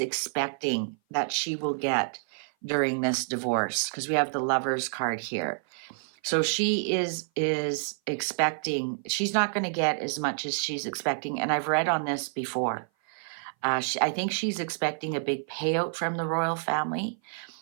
that she will get during this divorce, because we have the Lovers card here. So she is expecting, she's not going to get as much as she's expecting. And I've read on this before. I think she's expecting a big payout from the royal family.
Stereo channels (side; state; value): left; silent; 56 dB below the other